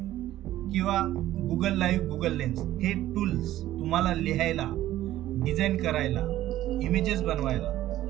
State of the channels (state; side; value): quieter; left; 14.1 dB